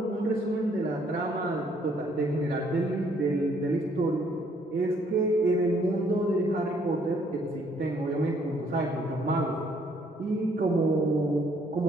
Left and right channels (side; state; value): both; normal; correlation 0.65